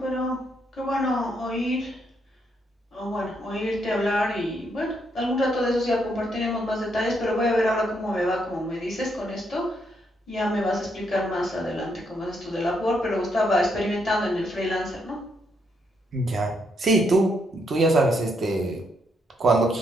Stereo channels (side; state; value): both; normal; correlation 0.76